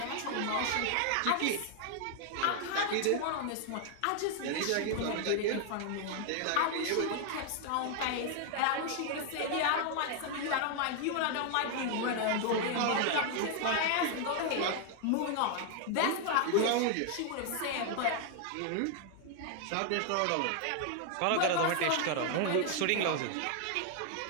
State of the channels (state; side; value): different; both; correlation 0.00